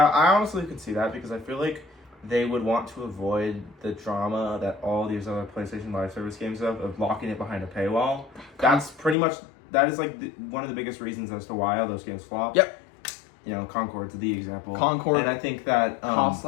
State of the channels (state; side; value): drops out; right; at 9.2 s